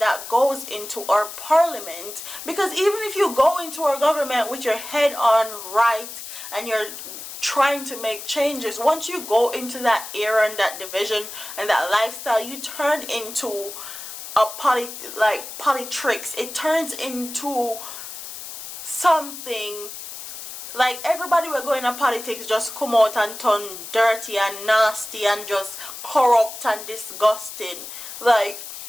goes into our parliament, because even if you go into our government with your head on right and you're trying to make changes, once you go into that era and that division and that lifestyle, you turn into a politics. It turns into something like everybody we're going to politics just come out and turn dirty and nasty and just corrupt and disgusting. Like,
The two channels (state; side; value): noise; left; hiss, 10 dB below the sound